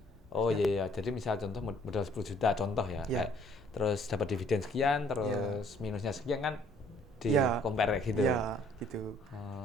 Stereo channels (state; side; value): normal; both; correlation 0.61